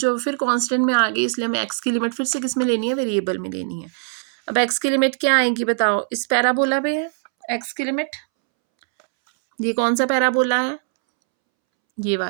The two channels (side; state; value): left; silent; 65 dB below the other